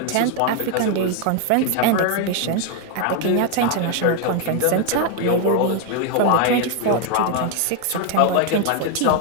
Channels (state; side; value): different; both; correlation 0.00